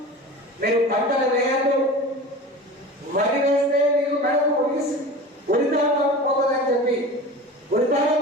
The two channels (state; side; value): normal; both; correlation 0.34